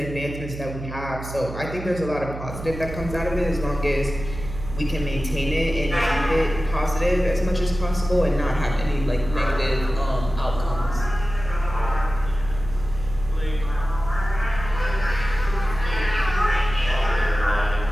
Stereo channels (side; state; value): right; noise; hum, 10 dB below the sound